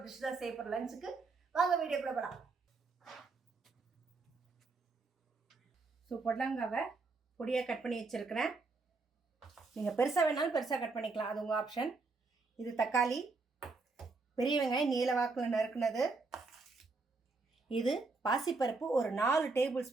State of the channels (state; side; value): quieter; left; 3.9 dB